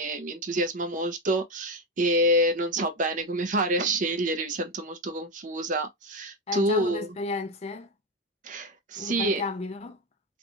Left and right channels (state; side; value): normal; both; correlation 0.13